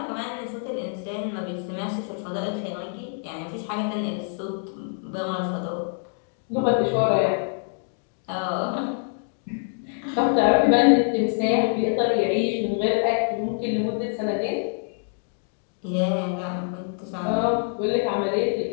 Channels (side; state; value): right; silent; 60 dB below the other